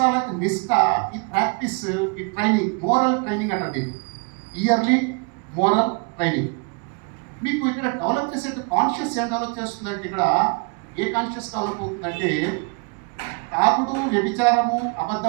నిష్ఠ, ఈ ప్రాక్టీస్, ఈ ట్రైనింగ్, మోరల్ ట్రైనింగ్ అంటారు. ఇయర్లీ మోరల్ ట్రైనింగ్ మీకు ఇక్కడ డెవలప్ చేసే కాన్షియస్ ఏం డెవలప్ చేస్తుందంటే, ఇక్కడ ఏ కాన్షియస్ డెవలప్ అవుతుందంటే, తాగుడు, వ్యభిచారము,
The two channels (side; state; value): left; quieter; 33.2 dB